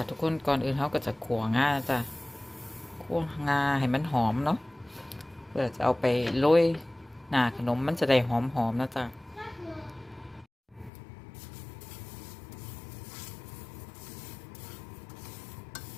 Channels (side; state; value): right; drops out; at 10.9 s